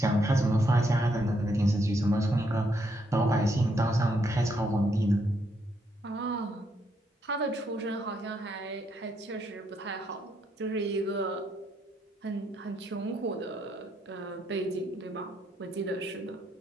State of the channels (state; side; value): normal; both; correlation 0.76